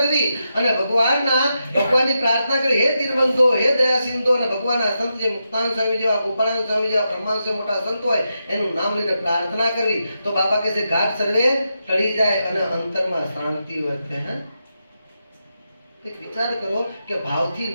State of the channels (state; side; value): inverted; both; correlation -0.86